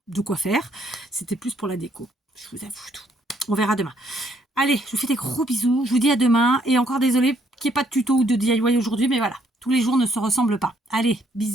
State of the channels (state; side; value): normal; both; correlation 0.69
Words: de quoi faire. C'était plus pour la déco. Je vous avoue tout. On verra demain. Allez, je vous fais des gros bisous. Je vous dis à demain. Et encore désolé qu'il n'y ait pas de tuto ou de DIY aujourd'hui, mais voilà. Tous les jours ne se ressemblent pas. Allez,